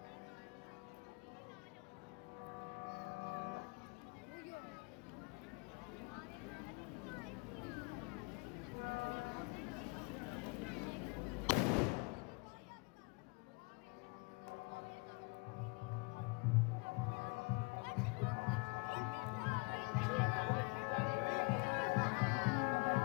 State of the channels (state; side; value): quieter; right; 29.2 dB